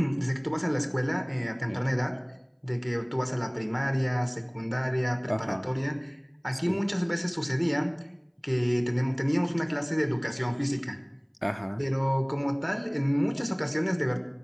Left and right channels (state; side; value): identical; both; correlation 1.00